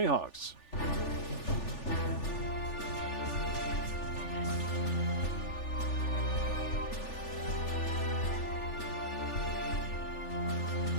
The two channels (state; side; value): late; right; 3.4 ms